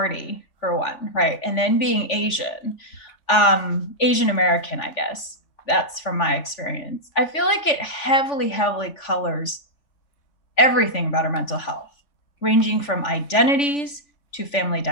for one, right, and then being Asian American, I guess that's from my experience. I feel like it heavily colors everything about our mental health, ranging from identities to family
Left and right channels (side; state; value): right; late; 3.5 ms